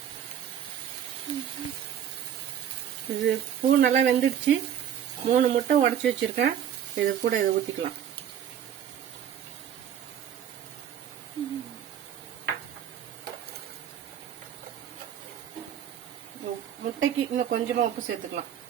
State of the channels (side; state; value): left; quieter; 9.6 dB